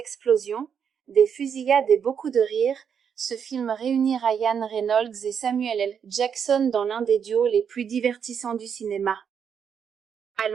des fusillades et beaucoup de rires, ce film réunit Ryan Reynolds et Samuel L. Jackson dans l'un des duos les plus divertissants du cinéma.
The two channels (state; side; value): quieter; left; 7.4 dB